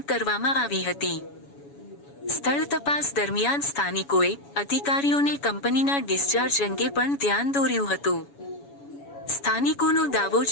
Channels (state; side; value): late; right; 7.1 ms